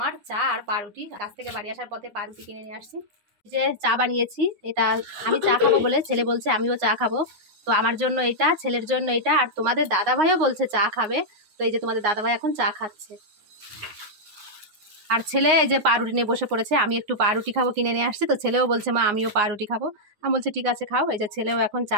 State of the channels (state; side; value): late; left; 9.5 ms